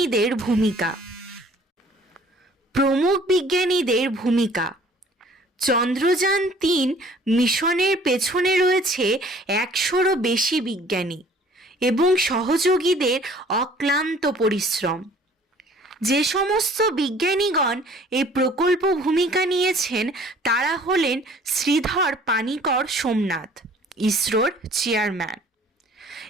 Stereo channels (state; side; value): normal; both; correlation 0.54